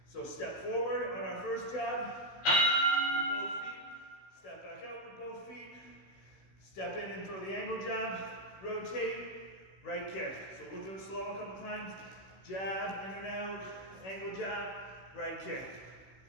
So step forward on our first jab with both feet, step back out with both feet, step in and throw the angle jab, rotate, right kick. So we'll do it slow a couple times. Jab, in and out, angle jab, right kick.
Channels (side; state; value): right; late; 16 ms